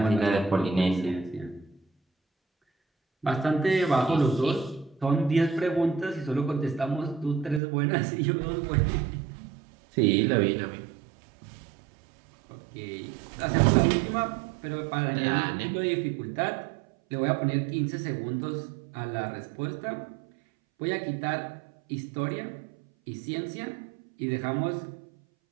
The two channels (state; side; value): drops out; left; at 7.6 s